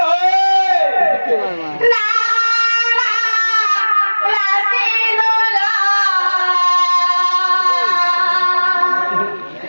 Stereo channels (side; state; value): both; inverted; correlation -1.00